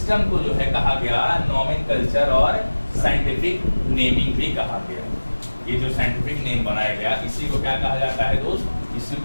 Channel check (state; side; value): inverted; both; correlation -1.00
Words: को जो है कहा गया नोमेनकल्चर और साइंटिफिक नेमिंग भी कहा गया। ये जो साइंटिफिक नेम बनाया गया इसी को क्या कहा जाता है दोस्त? इसी